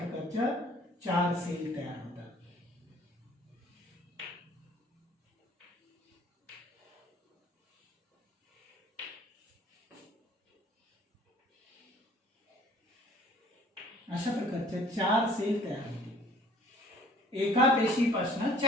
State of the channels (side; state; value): both; normal; correlation 0.53